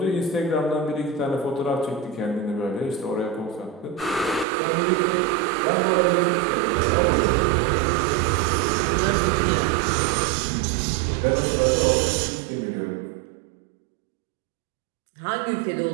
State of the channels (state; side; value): drops out; left; at 4.5 s